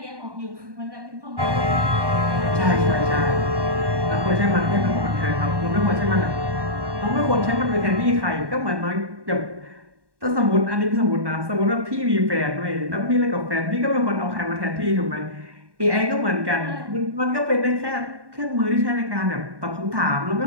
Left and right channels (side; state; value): left; late; 1.1 ms